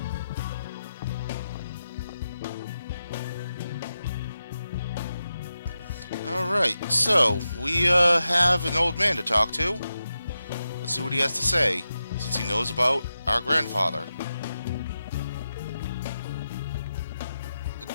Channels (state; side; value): inverted; both; correlation -0.90